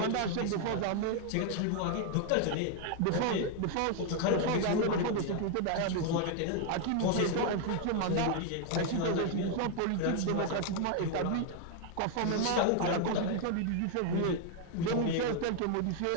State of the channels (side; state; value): both; different; correlation 0.00